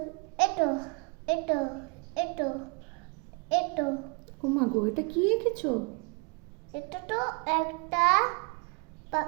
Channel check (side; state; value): left; quieter; 31.4 dB